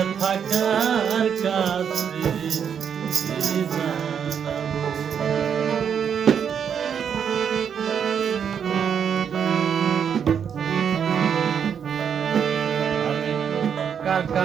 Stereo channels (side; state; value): left; quieter; 7.7 dB